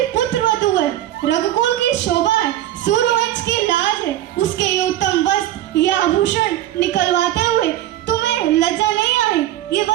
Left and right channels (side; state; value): left; quieter; 13.3 dB